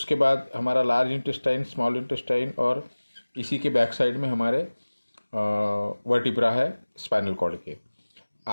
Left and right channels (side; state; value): both; inverted; correlation -1.00